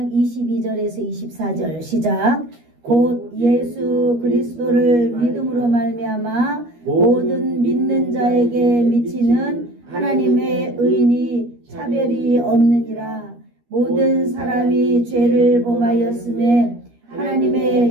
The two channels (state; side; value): late; left; 13 ms